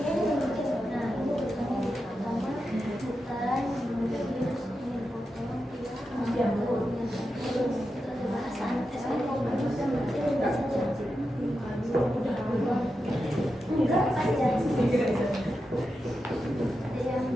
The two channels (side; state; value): both; normal; correlation 0.89